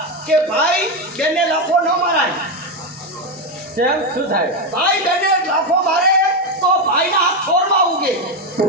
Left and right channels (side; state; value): both; normal; correlation 0.09